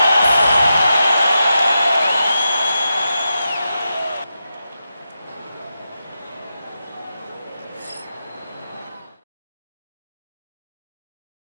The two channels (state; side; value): inverted; both; correlation -0.88